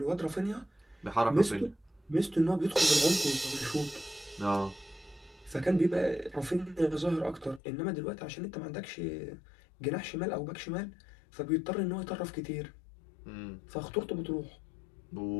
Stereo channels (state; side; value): drops out; right; at 7.6 s